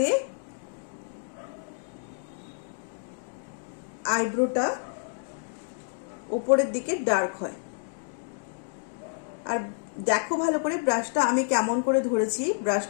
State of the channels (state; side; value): silent; right; digital silence